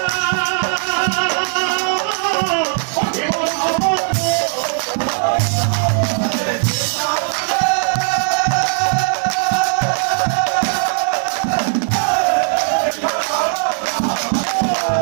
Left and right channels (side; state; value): left; silent; digital silence